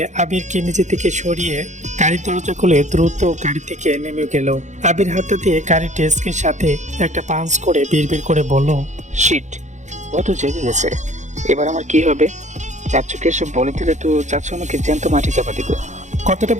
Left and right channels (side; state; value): left; late; 0.34 ms